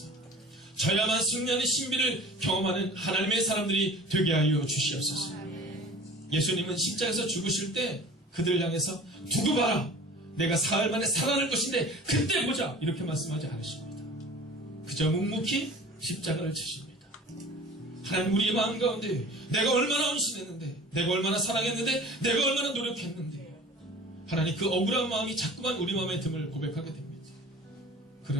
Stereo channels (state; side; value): normal; both; correlation 0.42